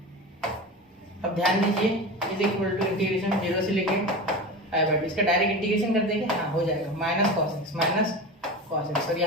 अब ध्यान दीजिए इज इक्वल टू इंटीग्रेशन 0 से लेके π/2, इसका डायरेक्ट इंटीग्रेशन कर देंगे, हाँ हो जाएगा, माइनस cos x, और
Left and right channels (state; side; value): normal; both; correlation 0.28